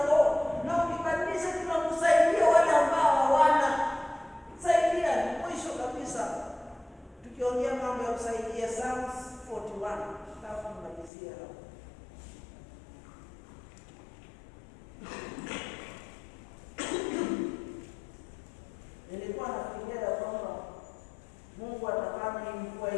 Lord. Na ukibadilisha kila mtu, saidia wale ambao hawana. Saidia mwisho kabisa. Tukiongea mambo ya kusaidia, Psalms 41. Tutaanza kumalizia hapo. Nilikuwa nafikiria kwamba Mungu atafanya mvua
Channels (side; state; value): right; drops out; at 11.1 s